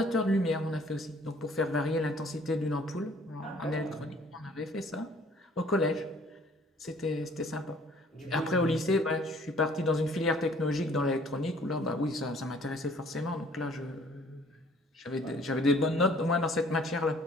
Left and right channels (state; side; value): normal; both; correlation 0.56